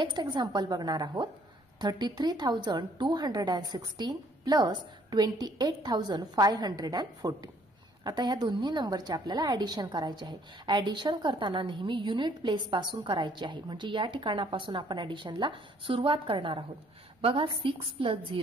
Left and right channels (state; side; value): normal; both; correlation 0.62